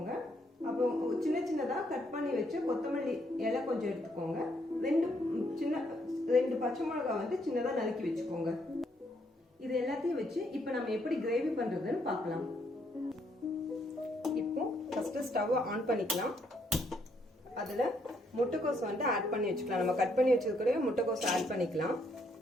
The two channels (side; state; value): both; normal; correlation 0.72